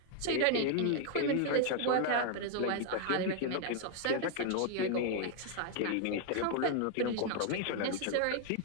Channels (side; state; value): both; different; correlation 0.00